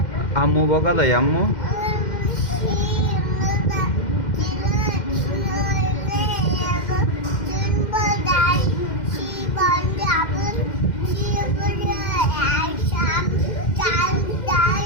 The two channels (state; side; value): late; right; 2.1 ms